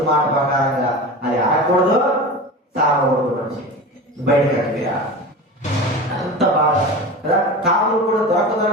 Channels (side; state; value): both; normal; correlation 0.30